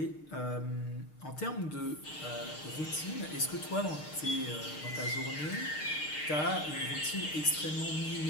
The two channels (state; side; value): late; right; 6.5 ms